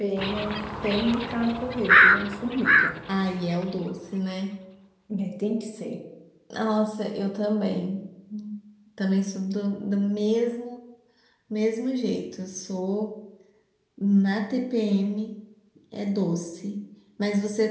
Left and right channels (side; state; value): both; identical; correlation 1.00